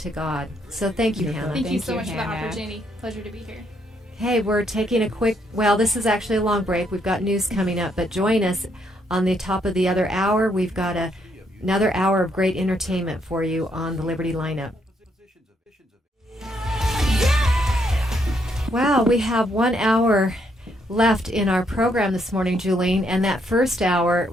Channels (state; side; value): normal; both; correlation 0.74